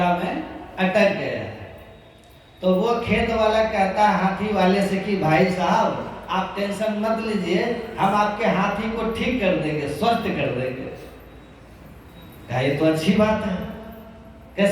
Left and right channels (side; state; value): both; identical; correlation 1.00